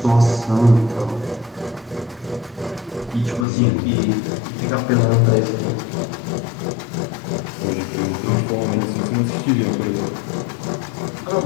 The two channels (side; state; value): right; drops out; at 3.5 s